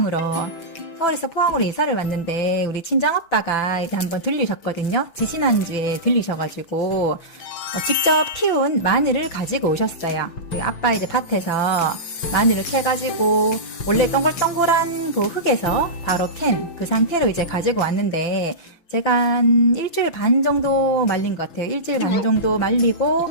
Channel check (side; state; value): right; late; 5.9 ms